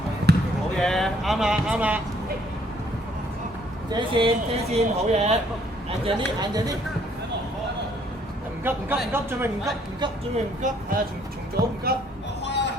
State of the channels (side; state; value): both; normal; correlation 0.64